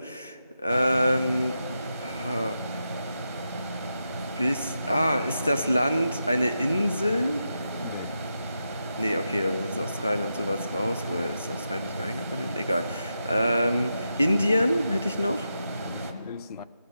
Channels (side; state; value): both; inverted; correlation -0.87